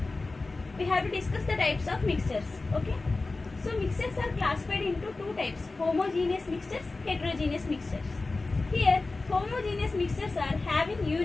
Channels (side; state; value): right; quieter; 3.5 dB